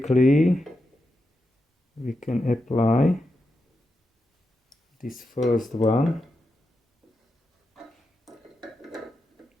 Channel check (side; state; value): both; normal; correlation 0.87